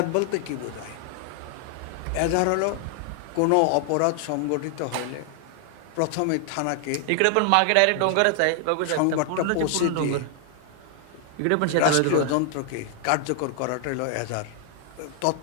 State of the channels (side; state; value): both; different; correlation 0.00